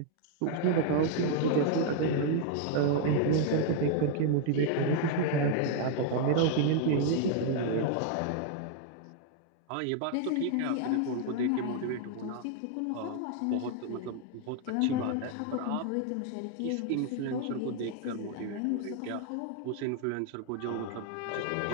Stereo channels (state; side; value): different; both; correlation 0.00